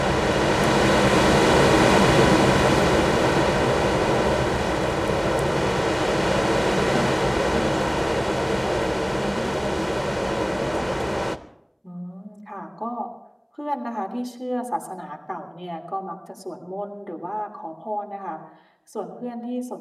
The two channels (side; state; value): both; identical; correlation 1.00